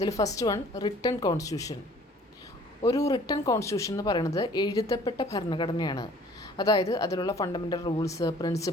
ഫസ്റ്റ് വൺ റിട്ടൺ കോൺസ്റ്റിറ്റ്യൂഷൻ. ഒരു റിട്ടൺ കോൺസ്റ്റിറ്റ്യൂഷൻ എന്ന് പറയുന്നത് എഴുതപ്പെട്ട ഭരണഘടനയാണ്. അതായത് അതിലുള്ള ഫണ്ടമെൻ്റൽ റൂൾസ്,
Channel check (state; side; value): normal; both; correlation 0.53